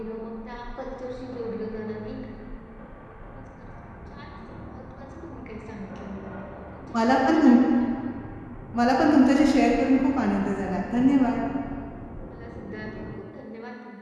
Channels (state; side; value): identical; both; correlation 1.00